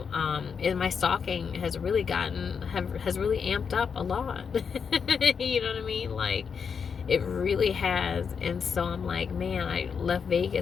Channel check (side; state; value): right; quieter; 6.3 dB